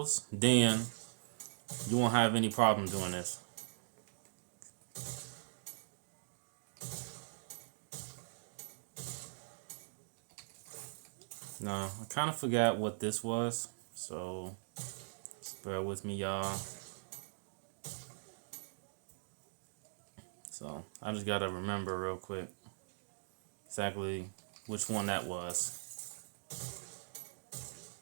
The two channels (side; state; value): left; silent; digital silence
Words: then you won't have any problem doing this. Now, I kind of forgot what this was, so just bear with me, y'all. So I just gotta remember real quick exactly which one that was.